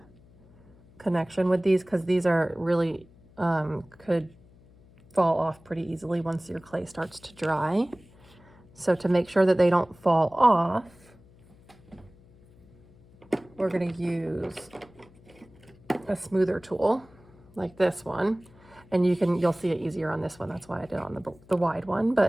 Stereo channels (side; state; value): left; noise; hum, 26 dB below the sound